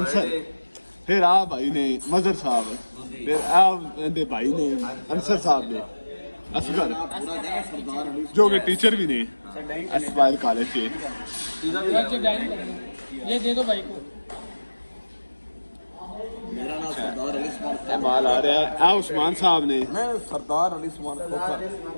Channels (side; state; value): both; inverted; correlation -1.00